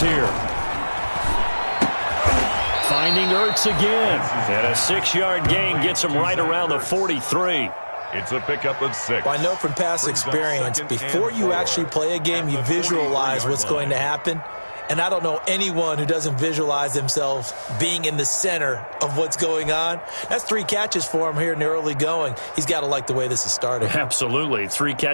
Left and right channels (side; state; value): both; inverted; correlation -1.00